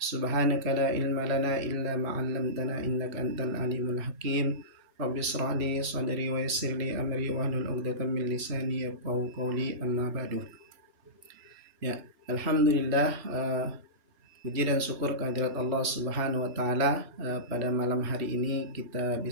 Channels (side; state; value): left; late; 3.4 ms